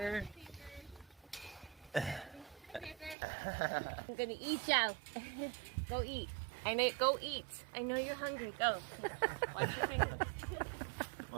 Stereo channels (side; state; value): left; drops out; at 3.2 s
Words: I'm gonna eat you. Go eat. Go eat. I know you're hungry. Go. Watch your fingers.